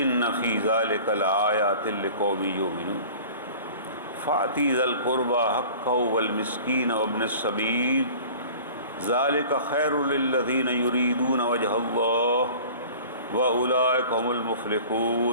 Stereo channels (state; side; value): inverted; both; correlation -0.43